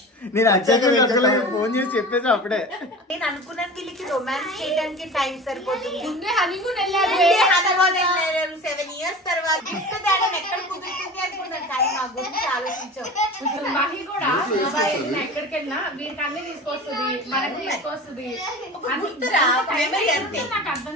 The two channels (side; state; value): both; normal; correlation 0.35